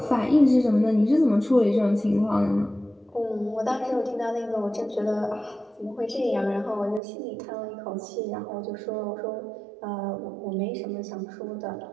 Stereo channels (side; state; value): left; drops out; at 7.0 s